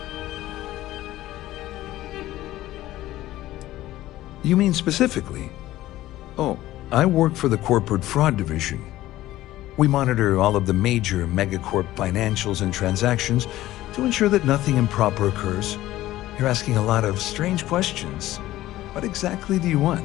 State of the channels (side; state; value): right; quieter; 15.4 dB